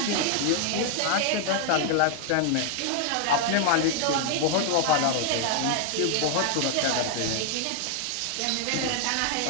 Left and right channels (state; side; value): different; both; correlation 0.00